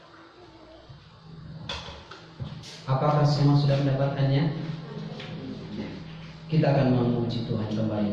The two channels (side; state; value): both; identical; correlation 1.00